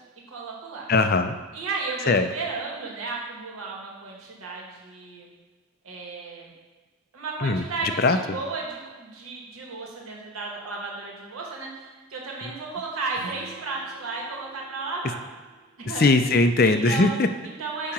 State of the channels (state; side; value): normal; both; correlation 0.33